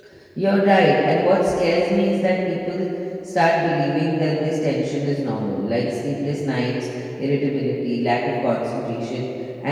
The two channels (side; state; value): both; identical; correlation 1.00